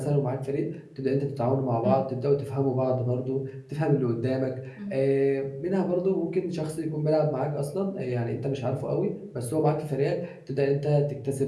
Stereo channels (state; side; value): identical; both; correlation 1.00